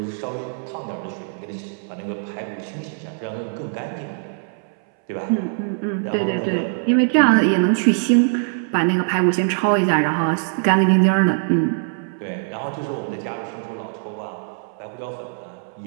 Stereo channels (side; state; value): left; silent; 64 dB below the other